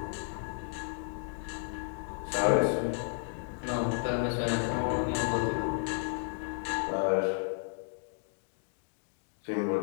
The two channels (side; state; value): right; silent; digital silence